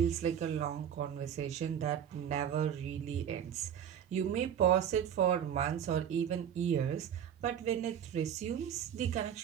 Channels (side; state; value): left; quieter; 9.2 dB